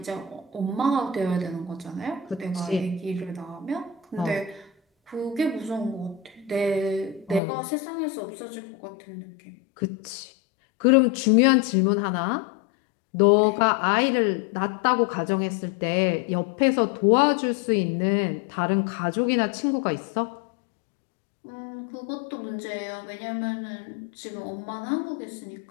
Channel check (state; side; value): drops out; right; at 7.4 s